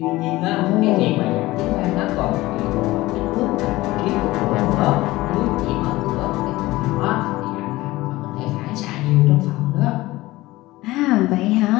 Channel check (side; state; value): right; quieter; 18.6 dB